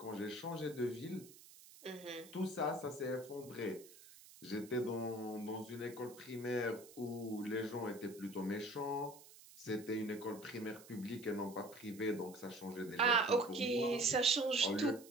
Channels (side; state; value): right; noise; hiss, 20 dB below the sound